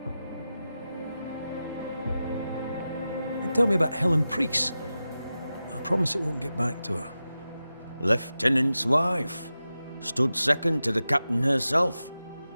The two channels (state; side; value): inverted; both; correlation -0.93